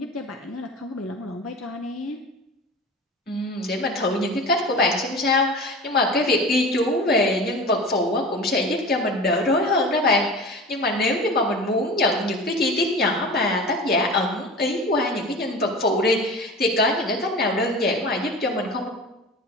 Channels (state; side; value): normal; both; correlation 0.35